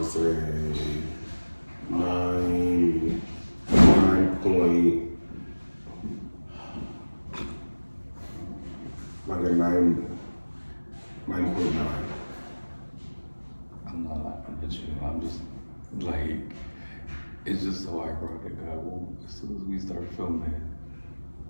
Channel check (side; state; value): both; inverted; correlation -1.00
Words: say 9 point, like a 9.9. I'm not laughing at you. I'm just like, it's just so ironic. As soon as we start filming,